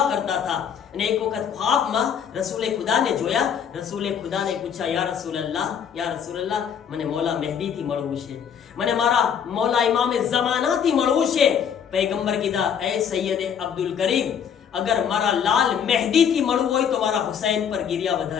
કરતા હતા. અને એક વખત ખ્વાબમાં રસૂલે ખુદાને જોયા. રસૂલે ખુદાને પૂછ્યા, યા રસૂલલ્લાહ, મને મૌલા મહેદીથી મળવું છે, મને મારા મૌલા ઇમામે ઝમાનાથી મળવું છે. પૈગંબર કીધા, એ સૈયદ અબ્દુલ કરીમ, અગર મારા લાલ મહેદીથી મળવું હોય તો મારા હુસૈન પર ગિરિયા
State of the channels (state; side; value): quieter; right; 7.9 dB